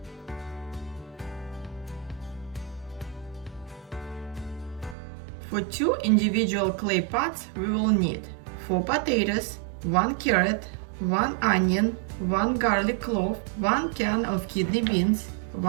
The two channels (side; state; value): left; drops out; at 5.0 s